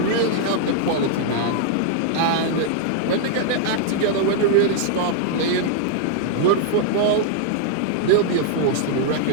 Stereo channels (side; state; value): both; different; correlation -0.01